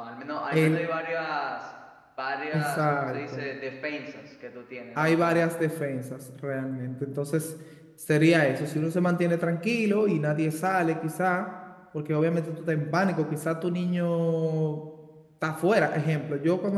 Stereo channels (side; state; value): both; identical; correlation 1.00